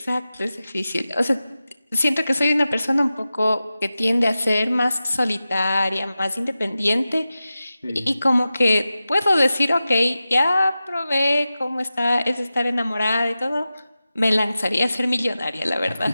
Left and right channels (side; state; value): both; inverted; correlation -0.94